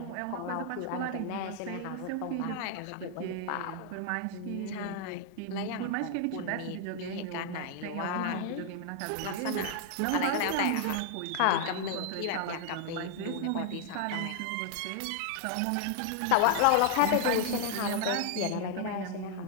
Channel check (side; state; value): both; different; correlation 0.00